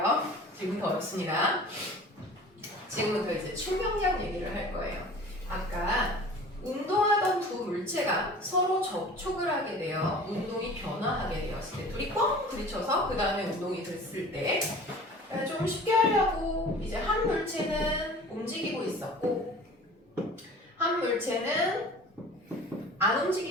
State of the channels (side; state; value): both; normal; correlation 0.43